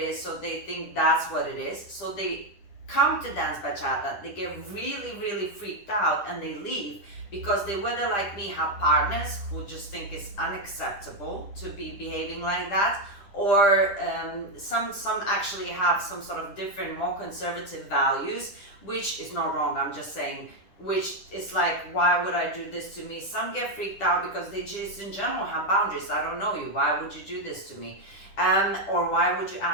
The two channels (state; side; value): late; right; 10 ms